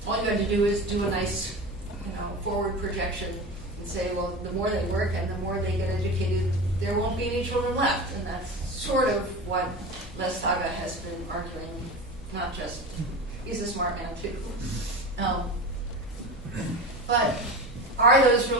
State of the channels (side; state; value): both; normal; correlation 0.28